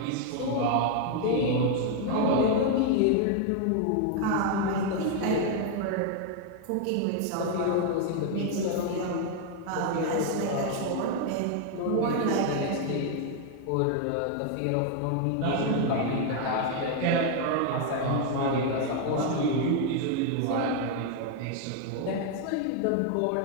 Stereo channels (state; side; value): different; both; correlation 0.00